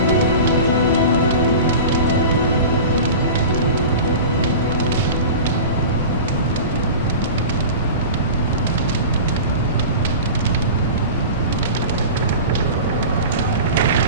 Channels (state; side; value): inverted; both; correlation -0.33